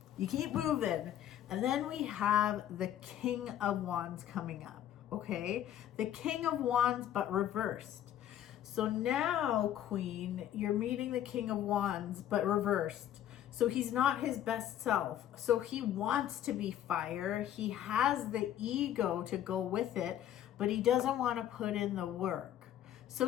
You keep moving. And then we have the King of Wands coming up. Okay, the King of Wands, but reversed. So now, Queen, you're meeting the King of Wands, but reversed. So he's not his best self. So he wants to be fire. He has the ego to go with it, but he doesn't want to put in the work.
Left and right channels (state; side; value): quieter; right; 11.3 dB